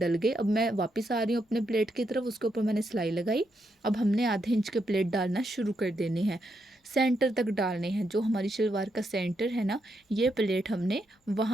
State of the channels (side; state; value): both; normal; correlation 0.80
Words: गए। अब मैं वापस आ रही हूँ अपने प्लेट की तरफ, उसके ऊपर मैंने सिलाई लगाई। अब हमने आधे इंच के प्लेट डालना शुरू कर देने हैं, सेंटर तक डालने हैं। जो हमारी शलवार का सेंटर है ना, ये प्लेट हमने